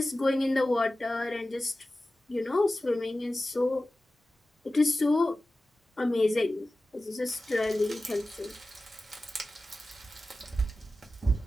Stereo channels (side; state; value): both; normal; correlation 0.95